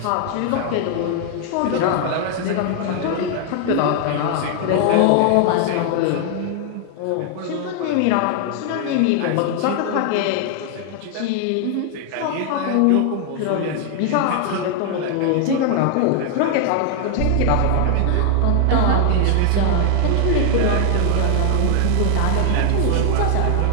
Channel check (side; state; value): both; different; correlation 0.00